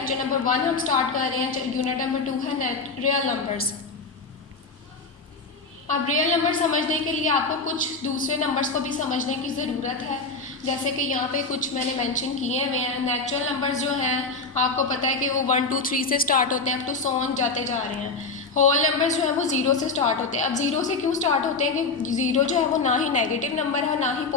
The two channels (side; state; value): right; quieter; 3.9 dB